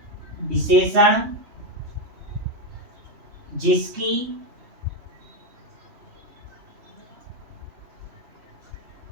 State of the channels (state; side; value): late; left; 3.2 ms